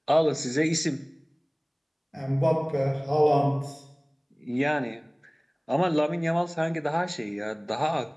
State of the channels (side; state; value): both; identical; correlation 1.00